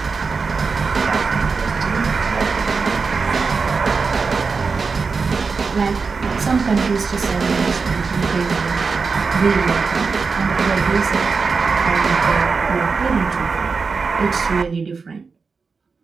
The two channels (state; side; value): quieter; left; 4.8 dB